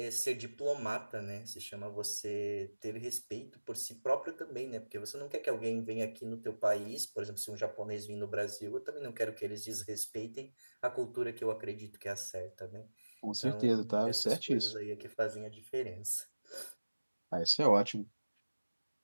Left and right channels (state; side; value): inverted; both; correlation -1.00